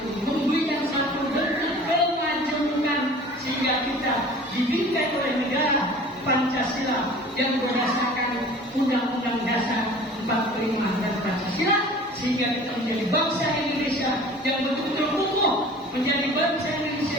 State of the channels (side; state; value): both; normal; correlation 0.44